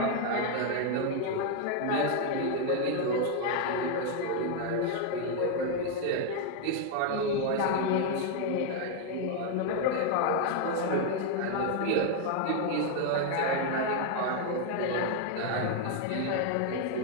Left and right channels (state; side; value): different; both; correlation 0.01